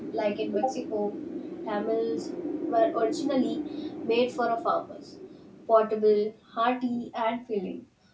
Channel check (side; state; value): both; identical; correlation 1.00